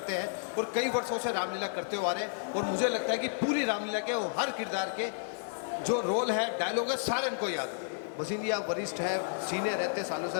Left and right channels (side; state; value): right; silent; 57 dB below the other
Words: हैं और कई वर्षों से रामलीला करते हुए आ रहे हैं। और मुझे लगता है कि पूरी रामलीला के हर किरदार के जो रोल है, डायलॉग है, सारे इनको याद है। भसीन जी आप वरिष्ठ है, सीनियर रहते सालों से